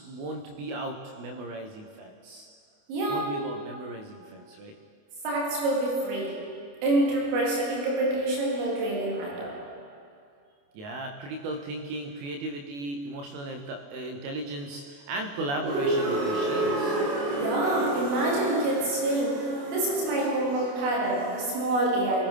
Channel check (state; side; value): late; left; 28 ms